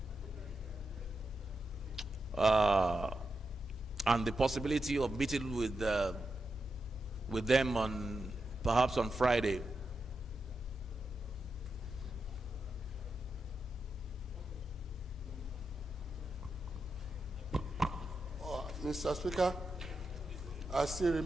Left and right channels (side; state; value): both; normal; correlation 0.87